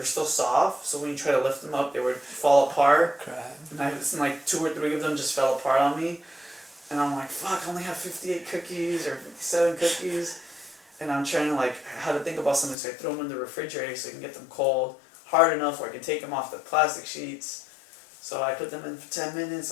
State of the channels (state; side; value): drops out; right; at 12.8 s